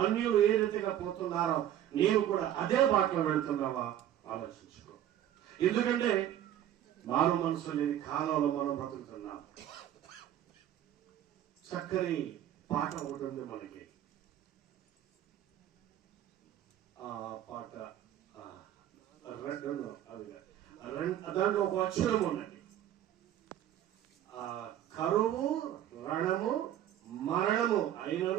అన్యులు ఏ రీతిగా పోతున్నారో నీవు కూడా అదే బాటలో వెళుతున్నావా? ఆలోచించుకో. ఎందుకంటే మారు మనసు లేని కాలంలో మనం బ్రతుకుతున్నాం. చక్కని పాట ఉంటుంది మనకి. ఆ పాట దాంట్లో ఒక అక్షరం ఉన్నది. కరువు, రణము, మరణము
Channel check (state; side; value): quieter; left; 11.5 dB